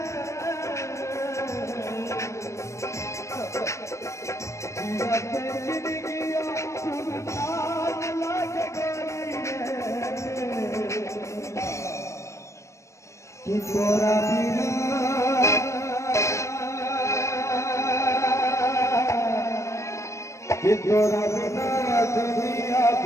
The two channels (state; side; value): late; right; 0.14 ms